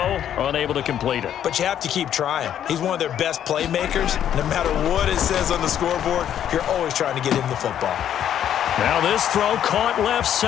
unable to complete it. But you have to keep trying. He's one of their best playmakers. No matter what it says on the scoreboard, you're always trying to get him the football. Now this throw caught left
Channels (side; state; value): right; quieter; 10.1 dB